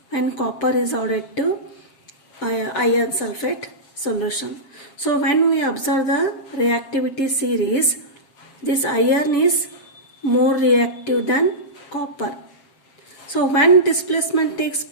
when copper is added to iron sulfate solution? So when we observe the reactivity series, this iron is more reactive than copper. So when displacement takes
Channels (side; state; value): right; late; 7.4 ms